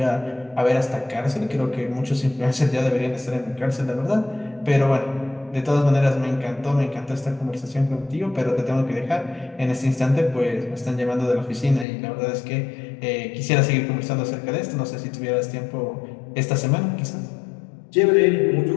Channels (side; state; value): right; drops out; at 11.9 s